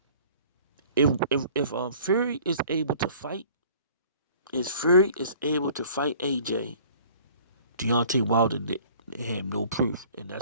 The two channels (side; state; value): both; inverted; correlation -0.50